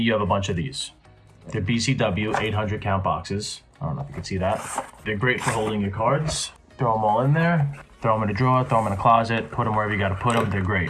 have a bunch of these. They're BCW 800 count boxes. I don't know if you can see that. They're great for holding your cards. Throw them all in there, throw them in a drawer, throw them in a closet, put them wherever you gotta put them. They're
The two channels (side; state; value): both; identical; correlation 1.00